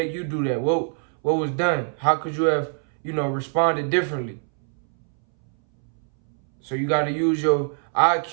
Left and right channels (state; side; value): silent; left; 62 dB below the other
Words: you do that? What was done? How could you have, responded differently? So you got to use your